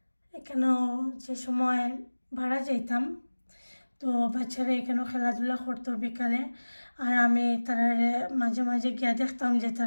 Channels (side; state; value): both; inverted; correlation -1.00